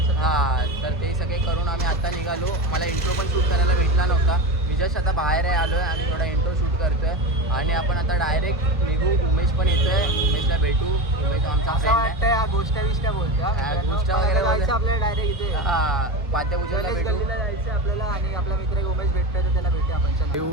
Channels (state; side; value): normal; both; correlation 0.23